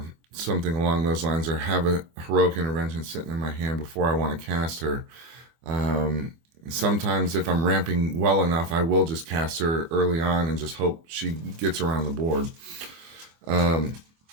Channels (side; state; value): left; late; 24 ms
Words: something along those lines, or have a heroic intervention sitting in my hand before I want to cast her. Sometimes if I'm ramping well enough, I will just cast her early on and just hope she gets around the board.